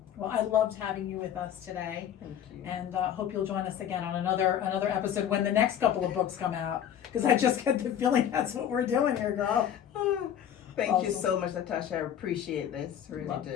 Well, I loved having you with us today, Thank you. and hope you'll join us again on another episode when the next couple of books come out. Because I just get the feeling that's what we're doing here, girl. Thank you Awesome. so much, Natasha. I appreciate this. Really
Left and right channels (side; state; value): right; quieter; 9.8 dB